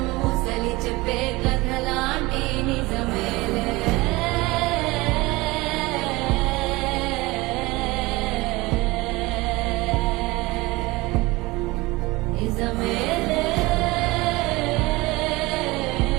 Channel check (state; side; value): quieter; left; 21.7 dB